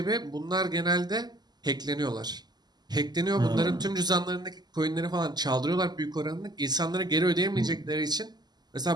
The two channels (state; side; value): late; left; 0.20 ms